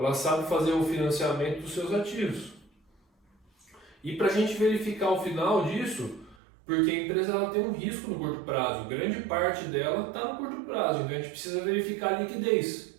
sabe fazer o financiamento dos seus ativos. E para a gente verificar o final disso, porque a empresa ela tem um risco no curto prazo, grande parte dela está no curto prazo, então a gente precisa verificar a liquidez,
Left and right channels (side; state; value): left; drops out; at 6.4 s